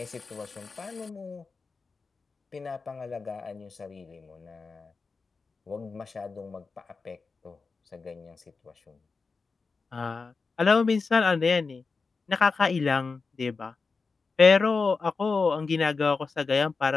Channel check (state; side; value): quieter; right; 4.5 dB